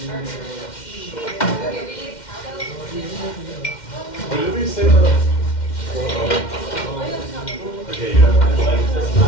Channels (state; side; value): late; right; 2.1 ms